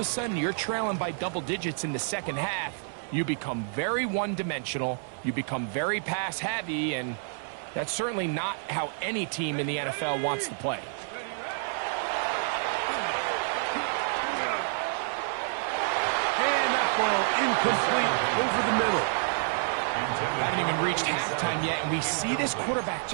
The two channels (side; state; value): left; silent; 59 dB below the other